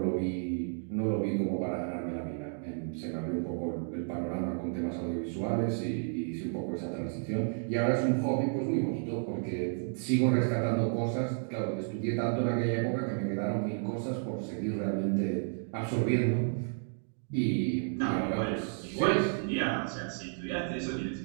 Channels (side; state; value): left; silent; 56 dB below the other